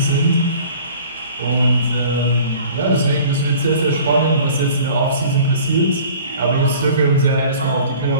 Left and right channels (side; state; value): both; inverted; correlation -0.47